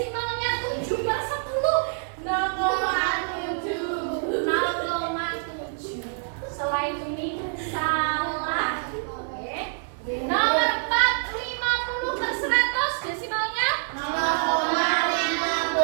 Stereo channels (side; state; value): left; silent; 61 dB below the other